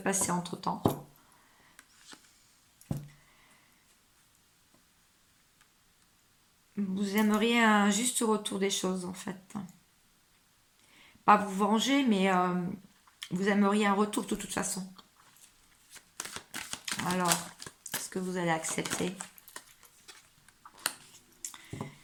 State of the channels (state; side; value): identical; both; correlation 1.00